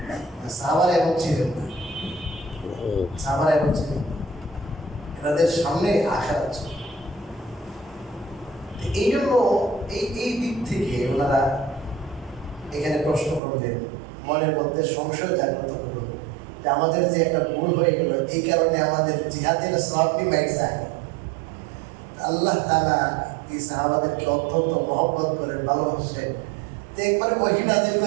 সাহাবারা এমন ছিলেন না, সাহাবারা এমন ছিলেন না, এনাদের সামনে আশা ছিল। এই জন্য এই দিক থেকে ওনারা এখানে প্রশ্ন করলেন, মনের মধ্যে সংশয় জাগ্রত হলো যে আমাদের যে একটা ভুল হয়ে গেল, এই কারণে আমাদের জিহাদের সওয়াবটি মাইক যায়। আল্লাহ তাআলা এই সাহাবাদেরকে অত্যন্ত মহব্বত করে ভালোবাসেন, তো একবারে ওহী নাযিল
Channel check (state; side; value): drops out; left; at 13.4 s